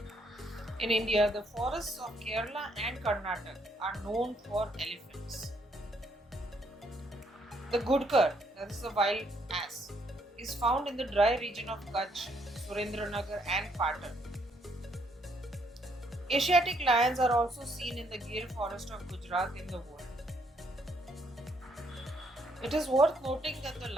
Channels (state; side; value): normal; both; correlation 0.71